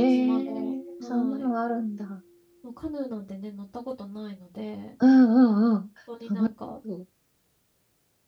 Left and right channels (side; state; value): both; identical; correlation 1.00